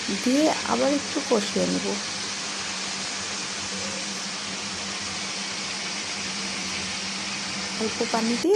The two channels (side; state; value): both; identical; correlation 1.00